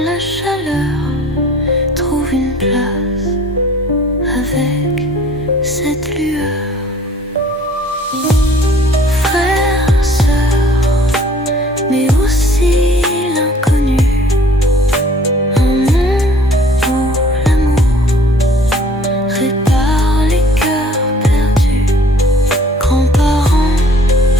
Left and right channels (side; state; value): both; normal; correlation 0.53